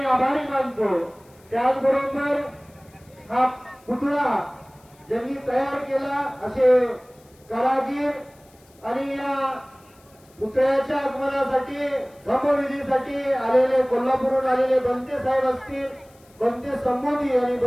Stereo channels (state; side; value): noise; left; hiss, 30 dB below the sound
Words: आभारी मानतो. त्याचबरोबर हा पुतळा ज्यांनी तयार केला असे कारागीर आणि या पुतळ्याच्या आगमनासाठी धम्मविधीसाठी आलेले कोल्हापूरहून आलेले बनते साहेब असतील, बनते संबोधी आणि